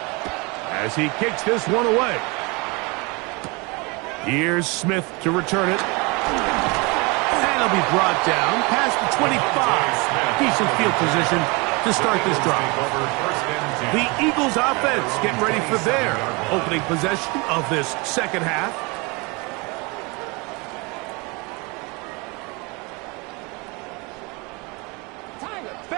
as he kicks this one away. Here's Smith to return it. And he'll be brought down past the 25. Decent field position to start this drive. The Eagles offense getting ready for their opening possession of this 2nd half.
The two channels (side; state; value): left; quieter; 27.8 dB